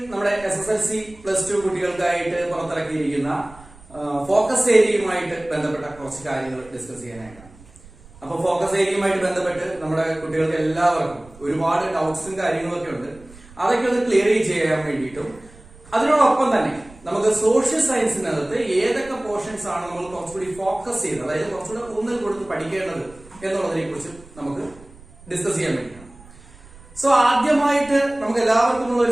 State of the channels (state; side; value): noise; right; rumble, 22 dB below the sound